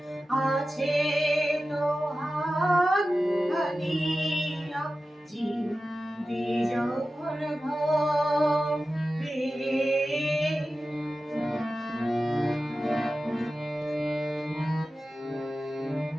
আছে তো হাত খানিয়া জিন্দি যখন ঘরে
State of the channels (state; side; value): normal; both; correlation 0.94